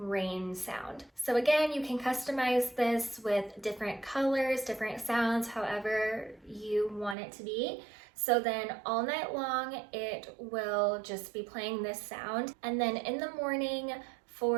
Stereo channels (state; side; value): drops out; left; at 7.2 s